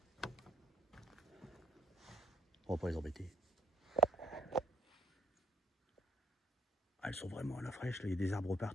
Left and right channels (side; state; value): both; normal; correlation 0.69